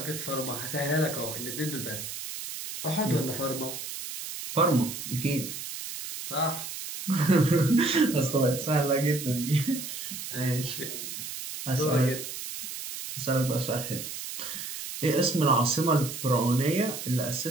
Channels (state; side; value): noise; right; hiss, 8 dB below the sound